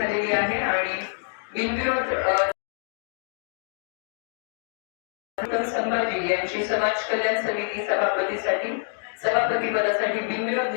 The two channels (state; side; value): silent; right; digital silence